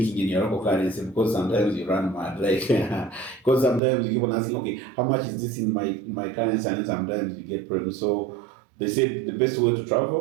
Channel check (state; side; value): drops out; left; at 3.8 s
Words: in your local currency, because sometimes you run mad. Because sometimes you keep on asking, okay, how much is this in my currency? And then sometimes you get problems. So they say the best way to